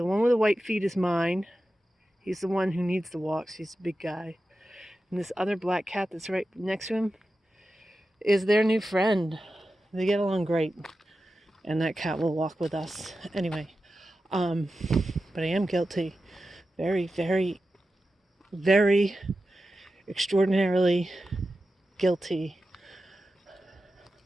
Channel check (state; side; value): normal; both; correlation 0.92